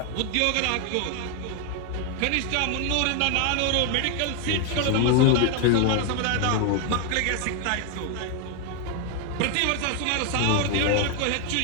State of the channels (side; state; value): both; different; correlation 0.01